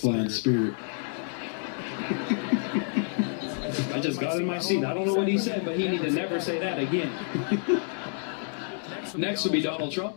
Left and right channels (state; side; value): silent; right; 55 dB below the other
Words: Spirit. I just got in my seat. I don't know what he said, but he need to never say that again. Next will be Donald Trump.